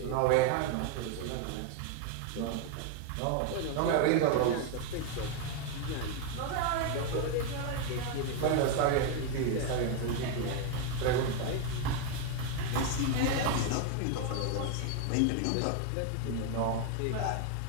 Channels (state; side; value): different; both; correlation 0.01